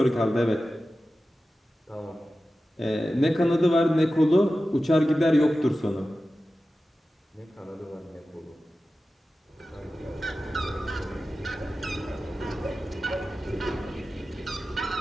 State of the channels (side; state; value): both; normal; correlation 0.94